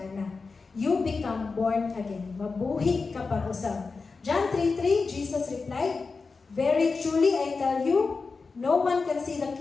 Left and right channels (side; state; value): right; quieter; 4.4 dB